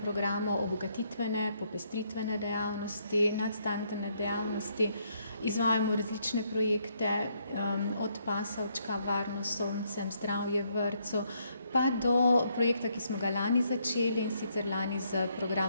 programu obogatitvene, popestritvene dejavnosti, nadstandardne dejavnosti. Izvajamo različne projekte, od pasovčka, varnost s soncem, zdravje v vrtcu, pa do projekta, ki smo ga lani začeli, in sicer lani z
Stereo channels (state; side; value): inverted; both; correlation -0.73